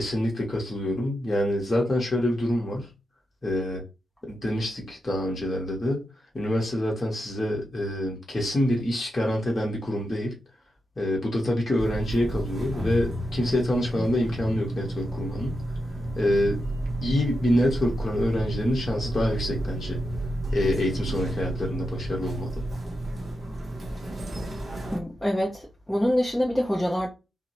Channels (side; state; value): both; normal; correlation 0.88